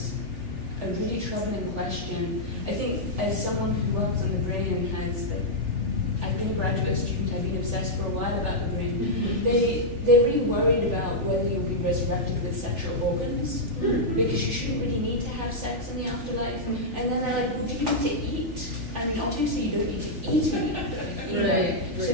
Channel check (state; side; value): late; left; 3.4 ms